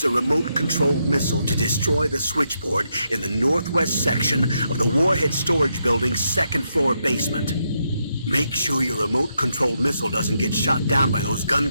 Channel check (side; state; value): both; inverted; correlation -0.81